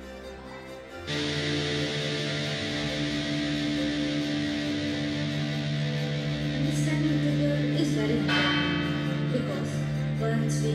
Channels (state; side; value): identical; both; correlation 1.00